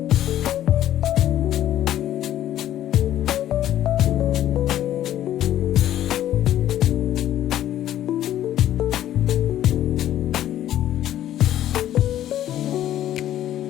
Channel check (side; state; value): right; quieter; 12.2 dB